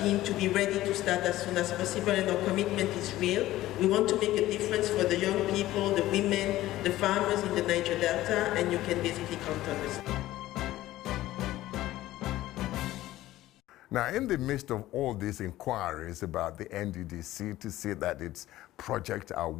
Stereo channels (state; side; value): quieter; right; 15.5 dB